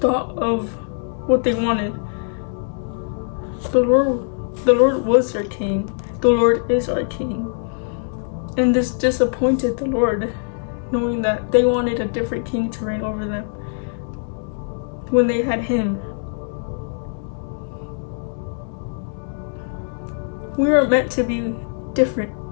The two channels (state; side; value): silent; right; digital silence